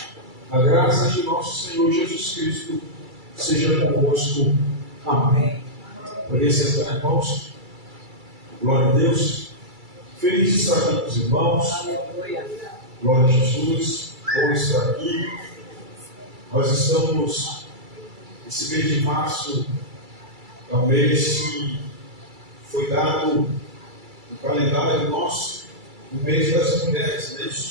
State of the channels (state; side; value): late; left; 2.3 ms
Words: A graça de nosso Senhor Jesus Cristo seja convosco. Amém. Poder sentar, irmãos. Glória a Deus. Feliz de estar aqui com os irmãos. Glória a Jesus. Bom estar aqui. Nós estamos, esse mês de março, é um mês que foi dado no calendário nosso, no mês das mulheres, não é